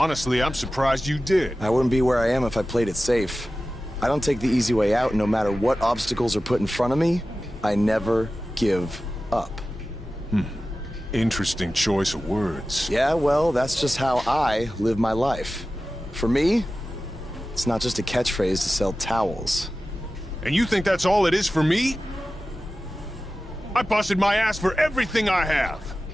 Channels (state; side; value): normal; both; correlation 0.95